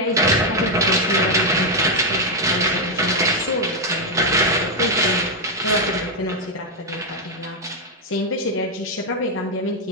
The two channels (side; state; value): both; normal; correlation 0.02